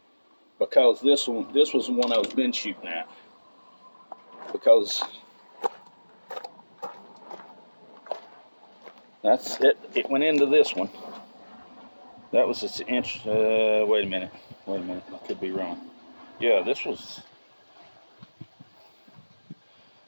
Because this was the one I was been shooting at. Because that's it. It went into this one. That was its inch. Wait a minute. I could be wrong. Yeah, this was.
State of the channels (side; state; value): both; inverted; correlation -1.00